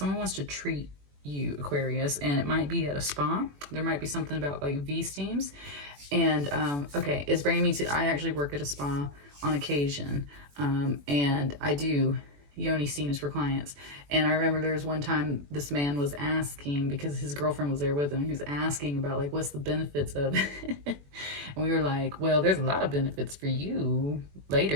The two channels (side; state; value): left; late; 21 ms